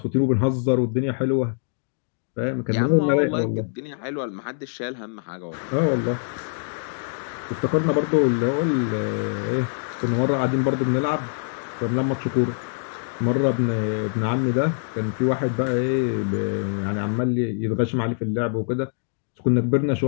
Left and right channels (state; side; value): silent; right; digital silence